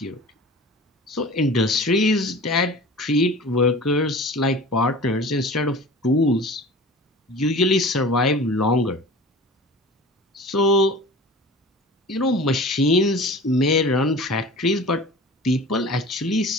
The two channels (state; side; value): normal; both; correlation 0.39